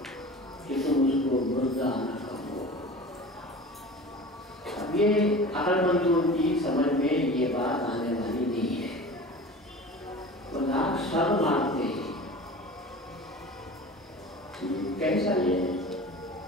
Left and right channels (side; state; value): both; normal; correlation 0.37